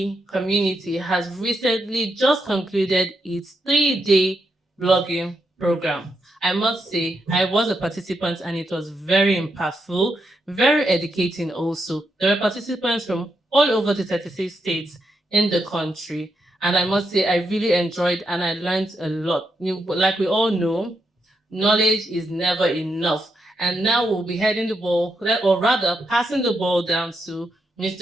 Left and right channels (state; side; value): normal; both; correlation 0.82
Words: community has recently just concluded its 3-day blogging program. I must say, I was a participant and it was very impactful, very educating also. There were participants from all over the 36 states in the country. And I must say, I really enjoyed and I learned a lot. Like we all know, knowledge is never enough. And now we'll be heading the ball, or rather passing the ball down to